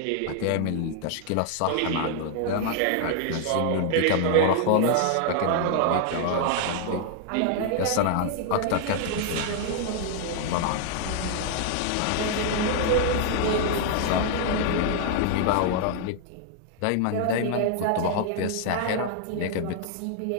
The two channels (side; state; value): both; different; correlation 0.00